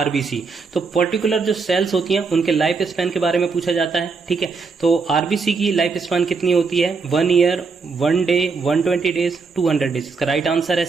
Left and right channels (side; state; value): left; quieter; 4.7 dB